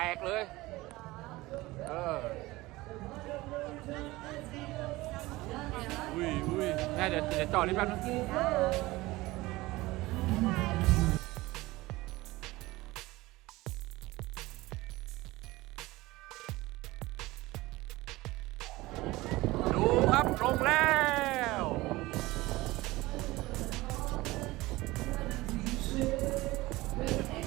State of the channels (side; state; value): left; quieter; 19.8 dB